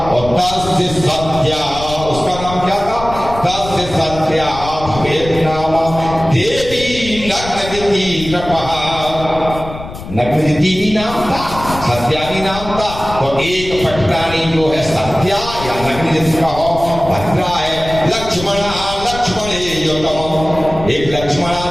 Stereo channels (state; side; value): noise; left; rumble, 11 dB below the sound